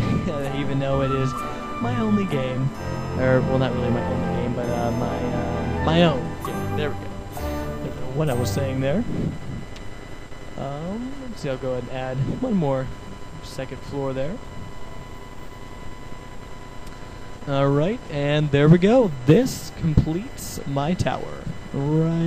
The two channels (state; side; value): identical; both; correlation 1.00